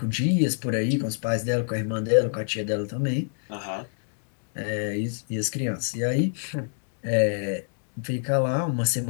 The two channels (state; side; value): silent; right; 60 dB below the other